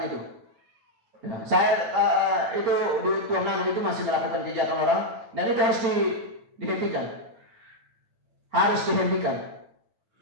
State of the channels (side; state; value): left; late; 9.0 ms